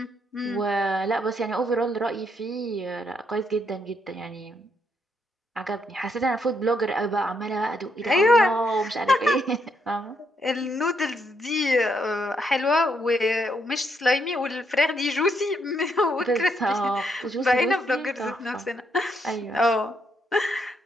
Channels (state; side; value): normal; both; correlation 0.76